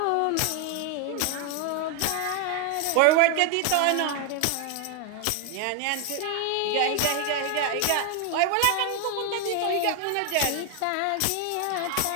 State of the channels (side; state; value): both; different; correlation 0.00